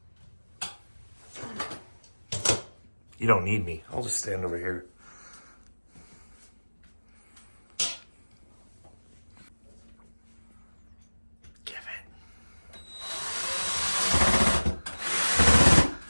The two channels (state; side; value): inverted; both; correlation -1.00